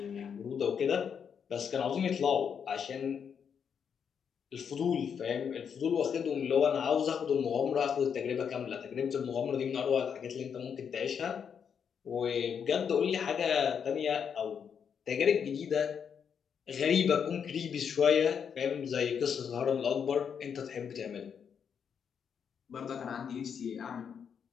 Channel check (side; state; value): right; quieter; 7.3 dB